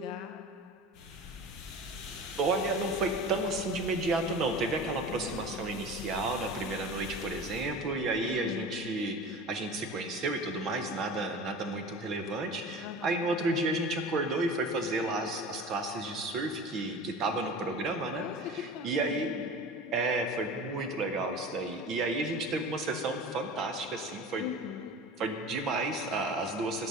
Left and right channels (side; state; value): both; normal; correlation 0.35